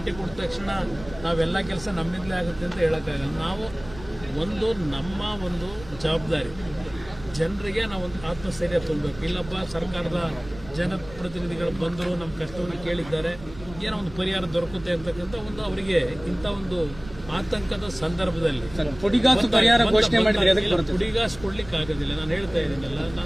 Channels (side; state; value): right; noise; rumble, 17 dB below the sound